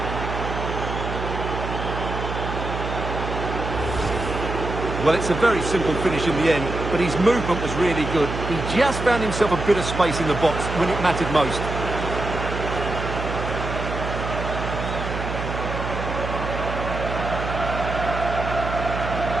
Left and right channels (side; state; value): right; noise; hum, 5 dB below the sound